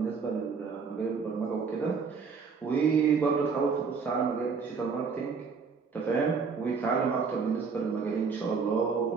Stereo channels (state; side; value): quieter; left; 5.3 dB